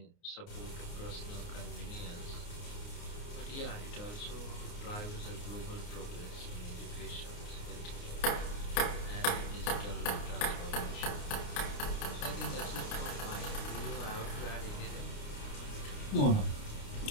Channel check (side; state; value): right; late; 29 ms